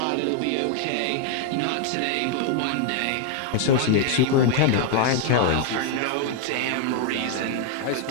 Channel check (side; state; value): both; different; correlation 0.00